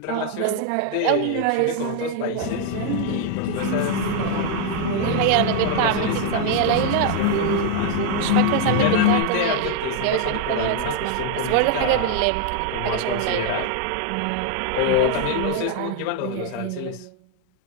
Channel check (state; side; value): different; both; correlation 0.00